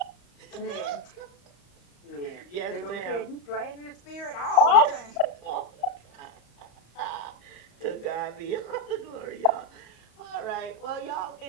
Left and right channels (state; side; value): late; right; 35 ms